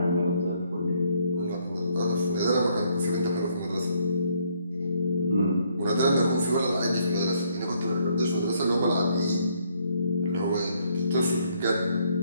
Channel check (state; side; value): inverted; both; correlation -0.69